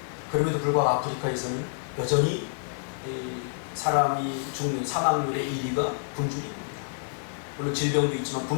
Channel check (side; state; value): right; silent; 59 dB below the other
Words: 그럼에도 불구하고 아프리카에서는 여전히 사람이 죽는 사망률의 1위가 굶주림입니다. 물론 질병도 있지만